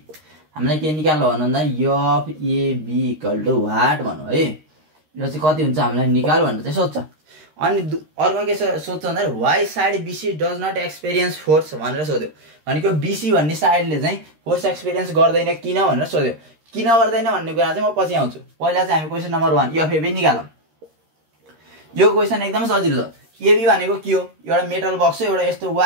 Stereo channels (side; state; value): left; late; 13 ms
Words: हामीलाई के निकाल्नु भन्दा F AB equal to what भन्नु है यो चाहिँ कति हुन्छ हामीलाई निकाल भनेर चाहिँ सोध्छ अनि अर्को के सोध्छ भन्दा Y side BC does not experience force भनेर सोध्यो भनेको बीसी भन्ने साइडले चाहिँ फोर्स एक्सपिरियन्स गर्दैन किन भनेर सोध्यो किन गर्दैन भन्ने कुरा चाहिँ म पछि आउँछु पहिला चाहिँ हामी क्वेशन नम्बर 1 एफ एबी निकालौं यो क्वेशन एकदम सजिलो छ एबी भनेको के हो एउटा मेटल बक्स हो एउटा यस्तो